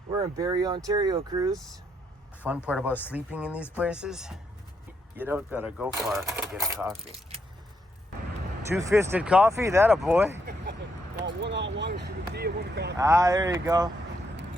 We're in Barrie, Ontario, cruise. Fun part about sleeping in these places, you don't gotta go far to get a coffee. Two-fisted coffee, that a boy. One on one is the tea and one coffee. Ah, there you go.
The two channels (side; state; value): both; normal; correlation 0.76